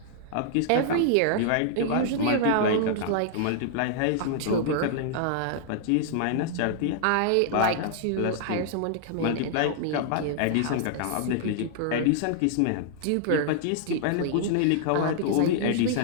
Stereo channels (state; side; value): different; both; correlation -0.01